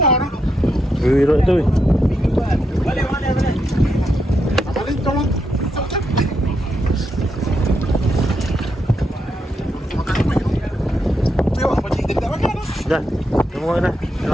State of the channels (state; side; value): normal; both; correlation 0.81